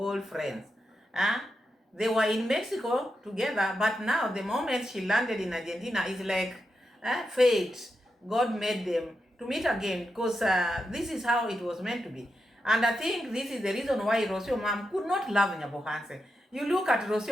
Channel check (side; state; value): both; normal; correlation 0.87